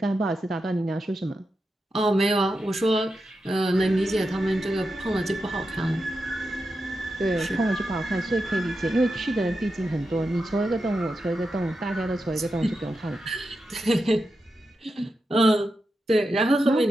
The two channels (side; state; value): both; normal; correlation 0.88